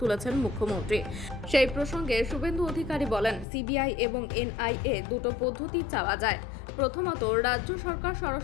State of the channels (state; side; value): drops out; right; at 3.5 s